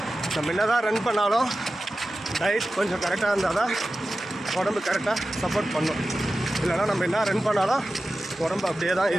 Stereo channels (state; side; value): normal; both; correlation 0.94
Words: நம்ம என்ன தான் ரன் பண்ணாலும் டயட் கொஞ்சம் கரெக்டாக இருந்தால் தான் உடம்பு கரெக்டாக சப்போர்ட் பண்ணும். இல்லைனா நம்ம என்ன ரன் பண்ணாலும் உடம்பு அப்படியே தான்